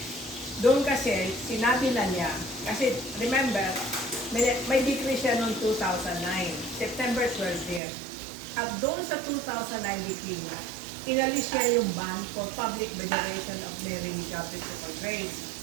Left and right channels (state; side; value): drops out; left; at 7.8 s